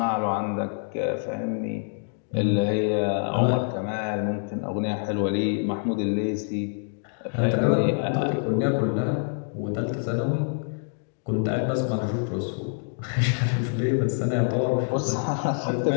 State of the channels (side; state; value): right; silent; 61 dB below the other